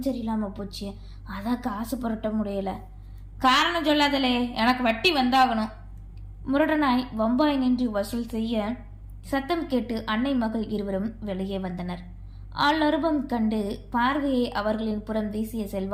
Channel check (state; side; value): identical; both; correlation 1.00